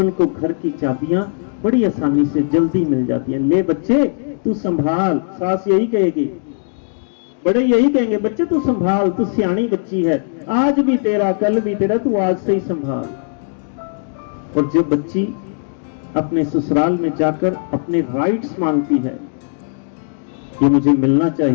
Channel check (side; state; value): right; silent; digital silence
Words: घर की चाबियां बड़ी आसानी से जल्दी मिल जाती हैं। ले बच्चे तू संभाल, सास यही कहेगी, बड़े यही कहेंगे, बच्चे तू संभाल, तू सियानी बच्ची है, आज भी तेरा कल भी तेरा, तू आज से ही संभाल। और जो बच्ची अपने ससुराल में जाकर अपने राइट्स मांगती है, ये मुझे मिलना